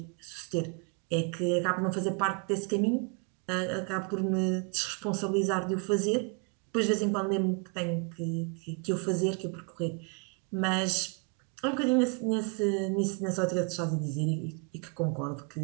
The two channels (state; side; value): quieter; left; 36.6 dB